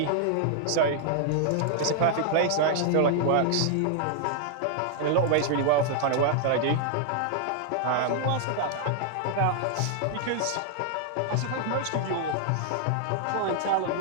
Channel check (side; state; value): both; different; correlation -0.01